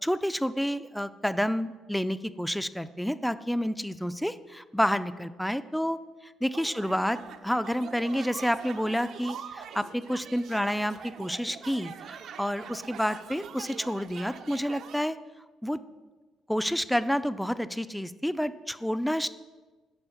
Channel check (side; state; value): both; normal; correlation 0.98